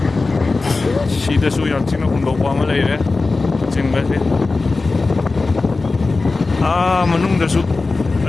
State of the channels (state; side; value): quieter; right; 3.7 dB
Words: đây số yang chính nó cũng đâu qua mà lấy đấy chính vậy à mà nung đây số